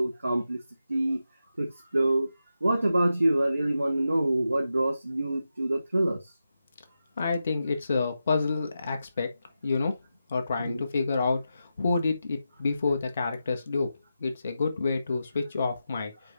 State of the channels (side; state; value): both; inverted; correlation -0.89